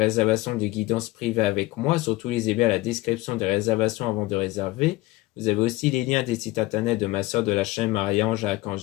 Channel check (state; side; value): quieter; right; 19.5 dB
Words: de guidance privée avec moi. Surtout, lisez bien la description des réservations avant de réserver. Vous avez aussi les liens des sites internet de ma soeur de la chaîne Marie-Ange à